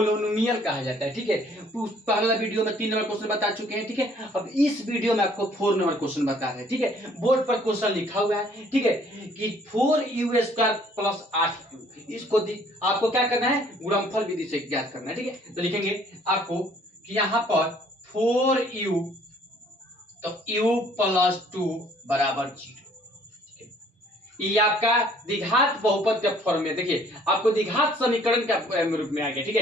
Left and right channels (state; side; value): normal; both; correlation 0.59